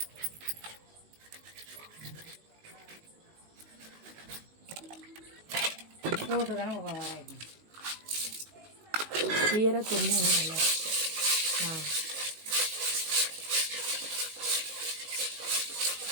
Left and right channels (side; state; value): left; late; 19 ms